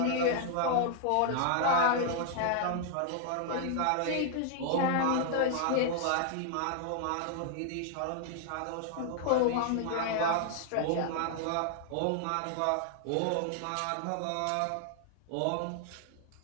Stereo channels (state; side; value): different; both; correlation 0.00